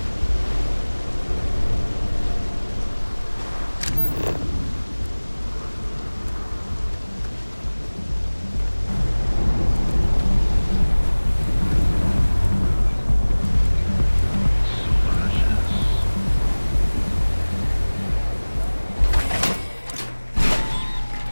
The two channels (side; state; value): both; inverted; correlation -1.00